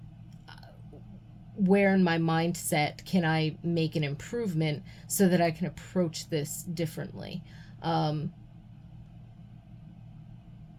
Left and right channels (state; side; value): identical; both; correlation 1.00